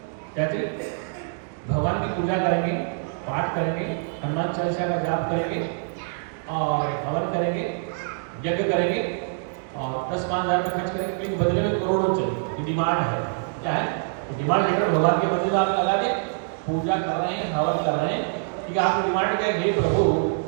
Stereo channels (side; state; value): left; silent; digital silence